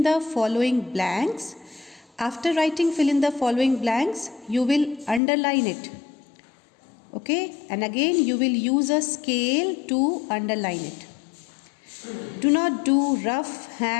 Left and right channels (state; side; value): drops out; right; at 5.2 s